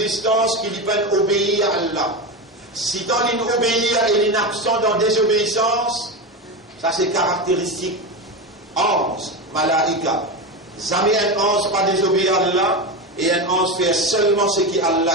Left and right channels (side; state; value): both; normal; correlation 0.18